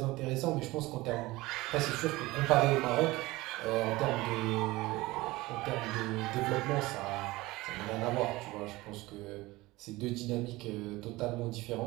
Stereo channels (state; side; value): quieter; left; 20.1 dB